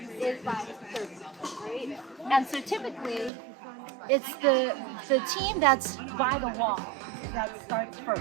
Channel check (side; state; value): left; drops out; at 3.3 s